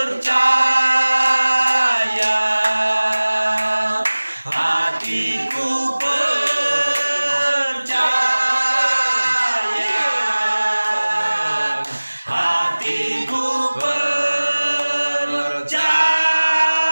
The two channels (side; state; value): both; inverted; correlation -1.00